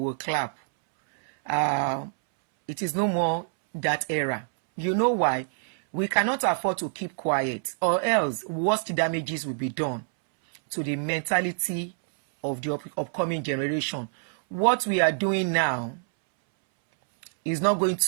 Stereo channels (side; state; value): left; silent; 61 dB below the other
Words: will clap. It is no more that era. You know why? We cannot afford to keep quiet, or else worst damages will be done to the mentality of the upcoming generation. What we are doing now is not going